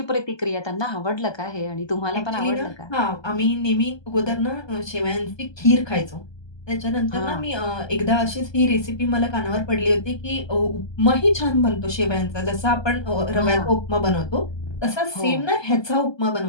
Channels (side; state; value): right; late; 1.2 ms